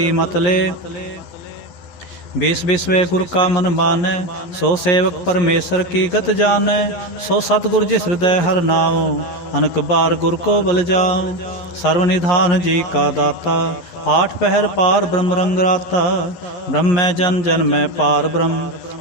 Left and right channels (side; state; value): right; late; 12 ms